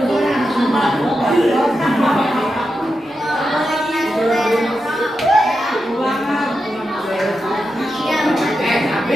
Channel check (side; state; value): both; normal; correlation 0.88